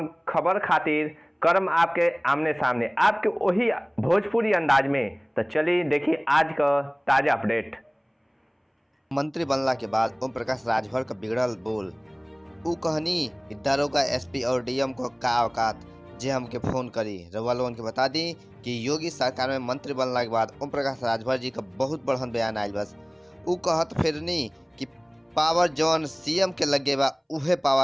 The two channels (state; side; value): identical; both; correlation 1.00